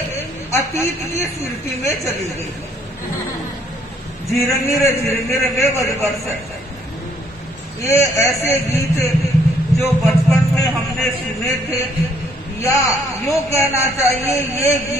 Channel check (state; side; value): normal; both; correlation 0.66